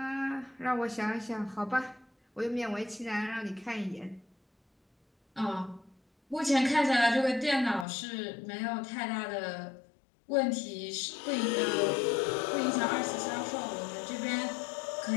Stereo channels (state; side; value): drops out; right; at 7.9 s